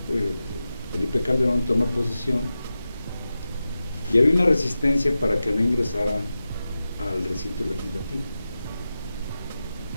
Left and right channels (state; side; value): inverted; both; correlation -0.93